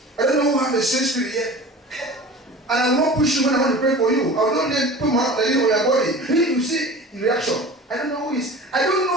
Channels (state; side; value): normal; both; correlation 0.39